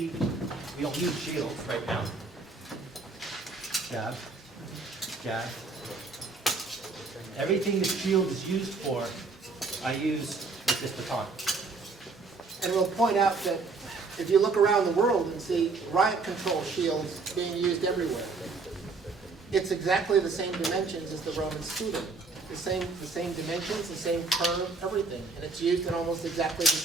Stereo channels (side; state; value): left; quieter; 4.1 dB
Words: we don't use shields right now. Jab, jab. Everything the shield is used for, I use with this baton. And we'll point out that if you look around the world and see riot control shields being used everywhere, it's exactly the same dimensions as the Roman scudo. The same dimensions, the same curve, everything. And it's used in almost exactly the